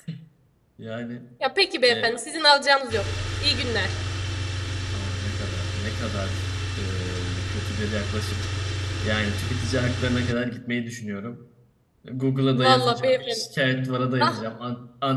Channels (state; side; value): identical; both; correlation 1.00